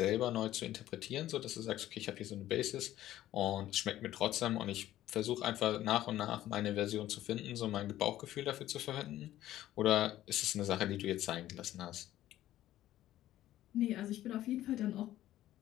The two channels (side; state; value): right; quieter; 13.8 dB